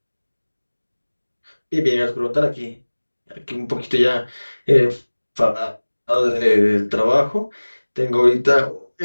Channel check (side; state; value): both; inverted; correlation -1.00